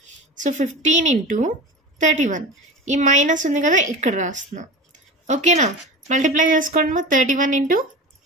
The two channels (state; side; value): normal; both; correlation 0.31